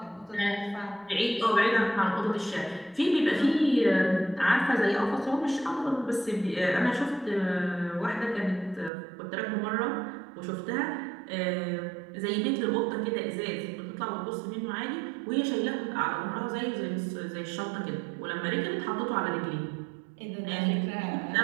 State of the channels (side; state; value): left; drops out; at 8.9 s